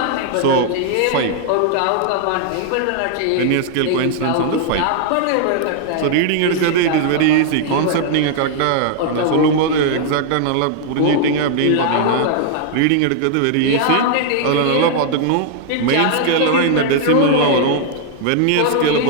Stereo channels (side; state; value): both; different; correlation 0.00